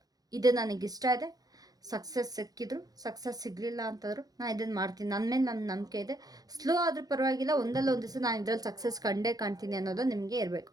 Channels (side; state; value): left; late; 0.18 ms